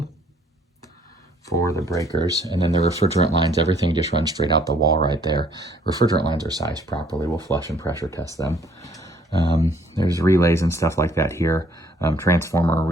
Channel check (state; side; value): normal; both; correlation 0.62